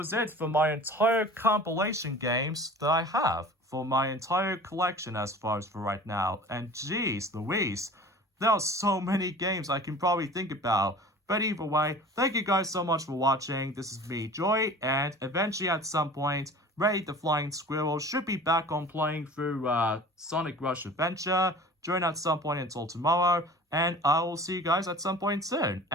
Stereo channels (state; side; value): normal; both; correlation 0.42